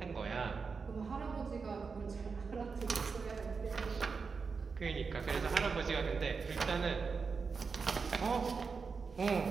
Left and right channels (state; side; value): quieter; left; 5.1 dB